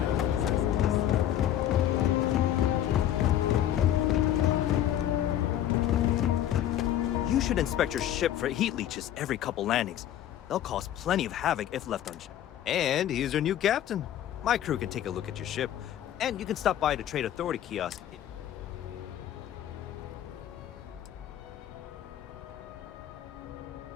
You should inspect your ship for heat leeches every couple landings. They'll cause plenty of havoc if left unchecked. And he's your new captain. My crew can take a look at your ship, and you can stop by the Trade Authority kiosk.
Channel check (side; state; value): right; quieter; 11.6 dB